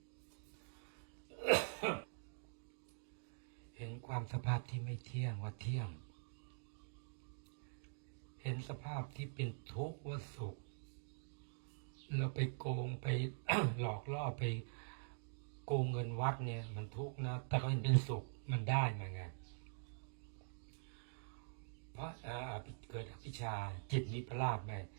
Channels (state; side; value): silent; left; digital silence